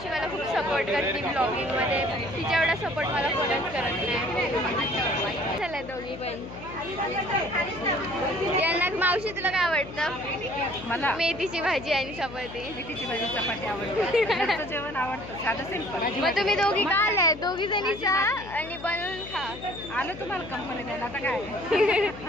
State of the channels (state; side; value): noise; left; hum, 13 dB below the sound